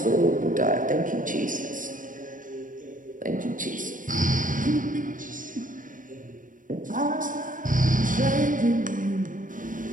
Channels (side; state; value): left; late; 0.38 ms